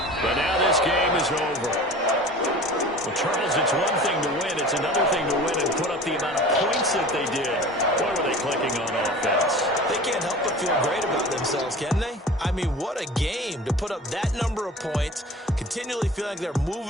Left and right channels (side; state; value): both; normal; correlation 0.40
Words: but now this game is over. Well, Charles, it's one thing to win. It's another thing to win and put up the amount of points that they did. Boy, were they clicking on offense. They can't help but feel great about themselves, can they? I mean, what a game to put up that number of points, continually feel like they're